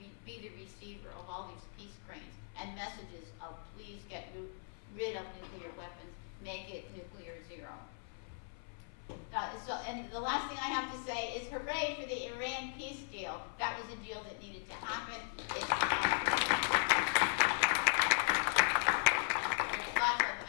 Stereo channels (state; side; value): silent; right; 52 dB below the other